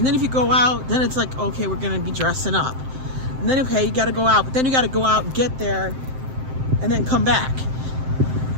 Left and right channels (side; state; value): left; late; 7.7 ms